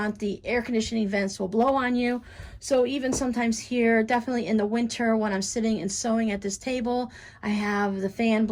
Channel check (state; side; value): identical; both; correlation 1.00